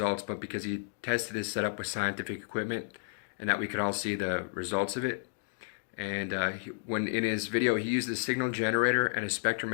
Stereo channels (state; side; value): silent; right; digital silence